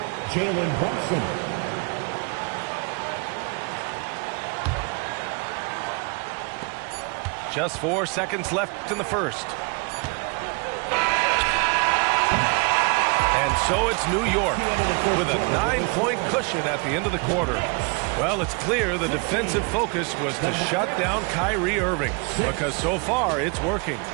Jalen Brunson. Just 4 seconds left in the first. And so it's New York with a 9-point cushion at the end of the quarter. Well, it's clear the defensive focus was to shut down Kyrie Irving, because so far it's working.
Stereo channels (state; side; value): quieter; left; 32.1 dB